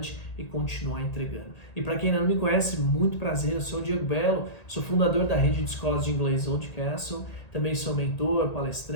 e continuar entregando. E para quem ainda não me conhece, muito prazer, eu sou o Diego Belo, sou fundador da rede de escolas de inglês Old Castle, também sou mentor,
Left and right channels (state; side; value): late; right; 1.8 ms